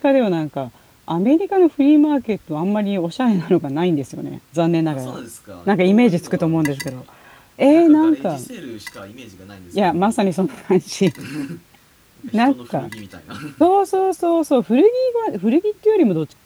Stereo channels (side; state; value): both; identical; correlation 1.00